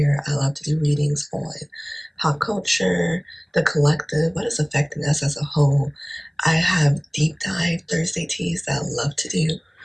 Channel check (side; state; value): both; identical; correlation 1.00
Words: I love to do readings on pop culture, the collective, what is affecting us as a whole. I have deep dive Thursday teas that I love to do